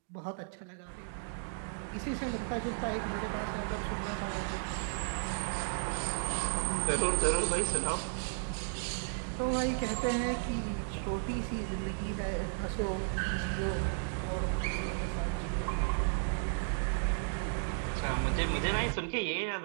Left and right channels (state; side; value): silent; left; digital silence